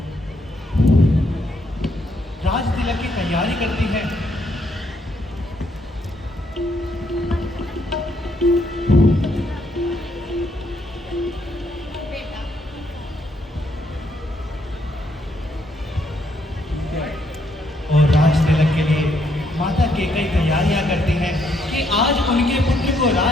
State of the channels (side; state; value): both; normal; correlation 0.73